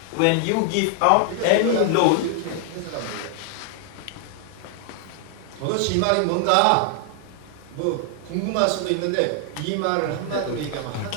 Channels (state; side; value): different; both; correlation 0.00